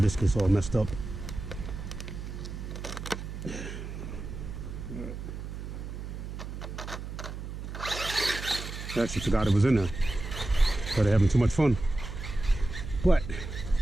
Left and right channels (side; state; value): right; noise; hum, 8 dB below the sound